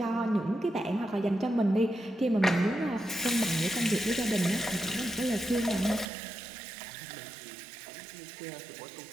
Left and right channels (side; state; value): left; drops out; at 6.1 s